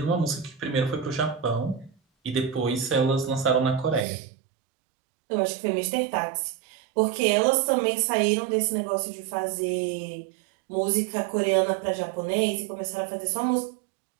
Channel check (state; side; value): drops out; left; at 4.0 s